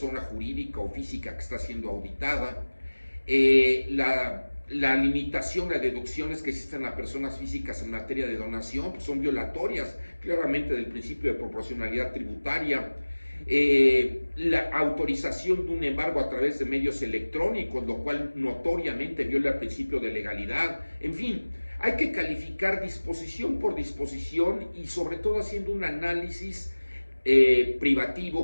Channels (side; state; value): both; inverted; correlation -1.00